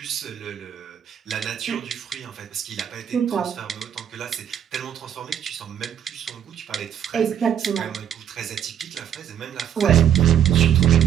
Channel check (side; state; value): left; quieter; 9.3 dB